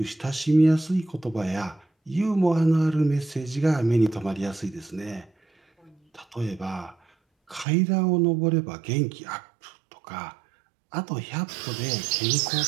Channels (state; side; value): drops out; left; at 7.7 s